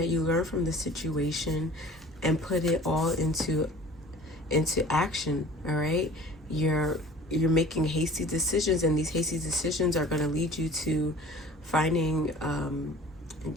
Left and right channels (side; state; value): both; normal; correlation 0.46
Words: you learn from the situation and put it all into action. All right, you're making hasty decisions, and these hasty decisions are going to lead you to finding